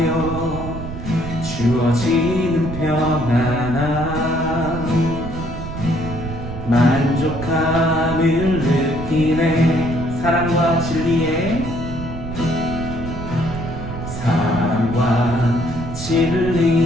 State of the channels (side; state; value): right; noise; rumble, 8 dB below the sound